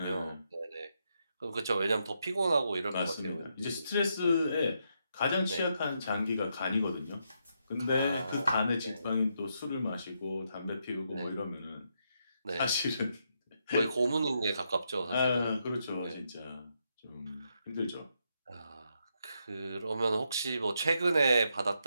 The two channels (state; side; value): inverted; both; correlation -0.80